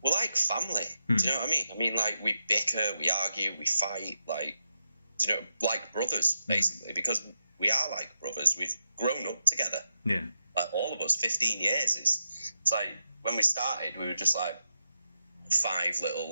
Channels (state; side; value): inverted; both; correlation -0.87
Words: we're like family. Do you know what I mean? I mean, like, we bicker, we argue, we fight, like, do you know, like brothers, basically, because we are like brothers. We've grown up together. Yeah. Like, all of us, 15 years. It's like, when we started, we were just like 5